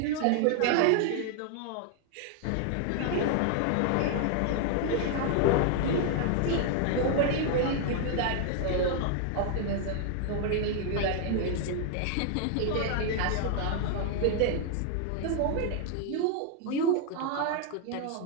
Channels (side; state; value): both; different; correlation 0.00